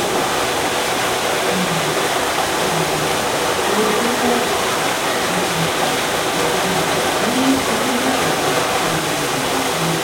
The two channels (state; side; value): identical; both; correlation 1.00